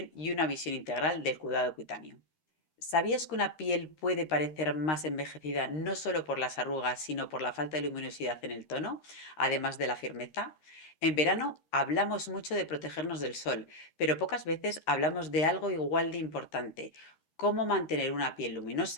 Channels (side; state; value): right; late; 13 ms